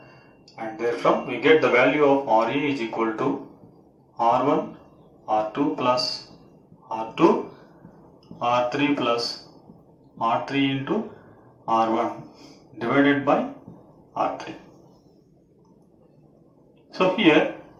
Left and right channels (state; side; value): identical; both; correlation 1.00